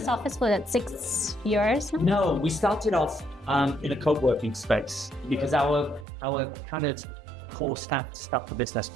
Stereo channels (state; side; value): drops out; left; at 6.1 s